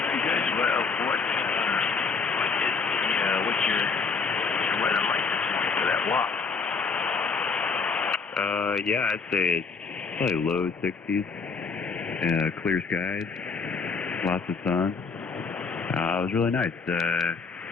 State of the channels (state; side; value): quieter; right; 4.9 dB